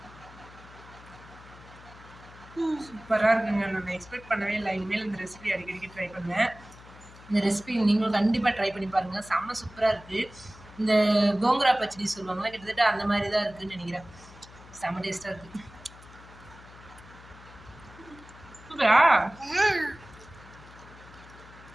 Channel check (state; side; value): noise; left; hum, 20 dB below the sound